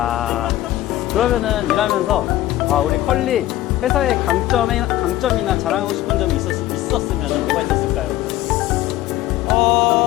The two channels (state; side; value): quieter; right; 14.9 dB